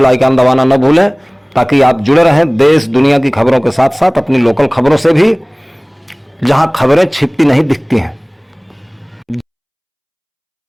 आइकन दबाना न भूलें ताकि आप जुड़े रहें देश दुनिया की खबरों के साथ साथ अपनी लोकल खबरों से भी, जहां खबरें छिपती नहीं दिखती हैं।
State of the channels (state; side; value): identical; both; correlation 1.00